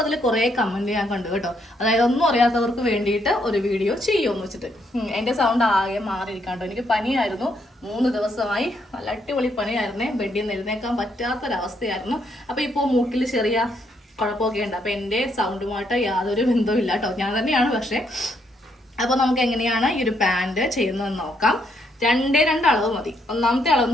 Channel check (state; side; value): normal; both; correlation 0.74